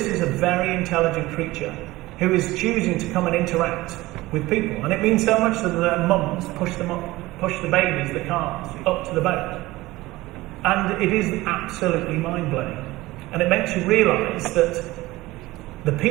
is a very intelligent creature who is choosing to come and interact with people. And it means so much that their mums push the babies, the calves, up to the boat. And it is absolutely mind-blowing. And it makes you realise that the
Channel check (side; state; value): left; quieter; 18.9 dB